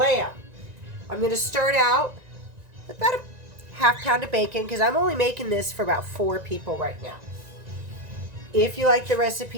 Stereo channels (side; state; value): left; late; 1.9 ms